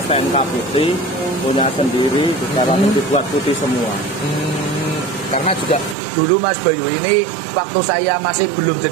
STNK putih punya sendiri, sekarang dibuat putih semua. Karena juga dulu Mas Bayu ini waktu saya masih belum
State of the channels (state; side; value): drops out; left; at 6.0 s